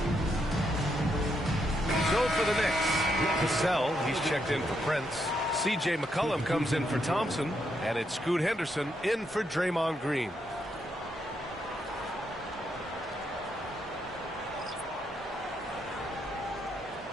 For the Knicks, Cassell, he's checked in for Prince. C.J. McCollum comes in for Thompson, and it's Scoot Henderson in for Draymond Green.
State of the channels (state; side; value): normal; both; correlation 0.79